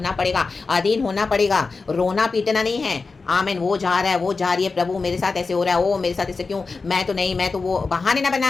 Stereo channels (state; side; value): quieter; right; 4.2 dB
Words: पड़ेगा, अधीन होना पड़ेगा, रोना पीटना नहीं है। आमीन। वो जा रहा है, वो जा रही है, प्रभु मेरे साथ ऐसे हो रहा है, ओ मेरे साथ ऐसे क्यों, मैं तो नहीं, मैं तो, वो बहाने ना